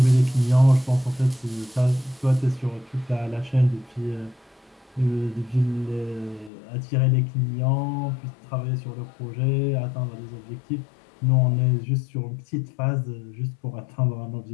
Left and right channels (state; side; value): drops out; right; at 6.5 s